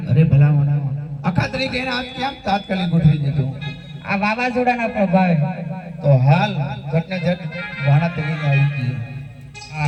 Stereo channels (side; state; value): both; identical; correlation 1.00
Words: અરે ભલા મને આખા તરીકે એને આજ કેમ તાત્કાલિક ગોઠવી દીધું? આ વાવાઝોડાના પ્રભાવે તો હાલ ઘટને ઘટ વાણા તરીકે આવી ગઈ.